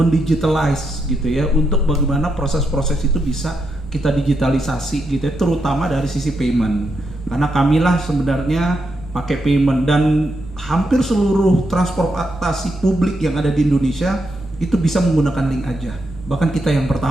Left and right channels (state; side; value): normal; both; correlation 0.82